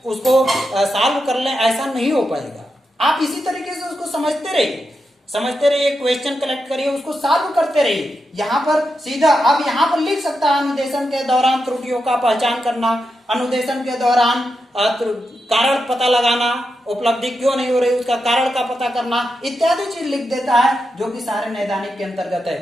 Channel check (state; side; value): normal; both; correlation 0.87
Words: उसको सॉल्व कर लें, ऐसा नहीं हो पाएगा। आप इसी तरीके से उसको समझते रहिए, क्वेश्चन कलेक्ट करिए, उसको सॉल्व करते रहिए। यहाँ पर सीधा अब यहाँ पर लिख सकता है अनुदेशन के दौरान त्रुटियों का पहचान करना, अनुदेशन के दौरान कारण पता लगाना, उपलब्धि क्यों नहीं हो रही उसका कारण का पता करना इत्यादि चीज लिख देता है, जो कि सारे नैदानिक के अंतर्गत है।